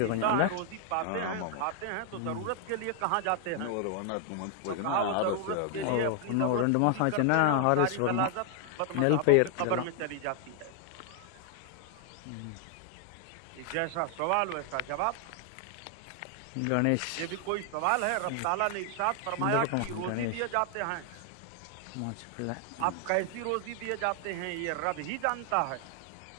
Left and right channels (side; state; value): both; different; correlation 0.00